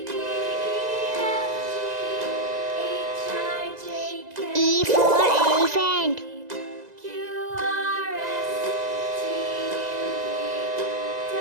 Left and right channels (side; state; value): left; late; 1.9 ms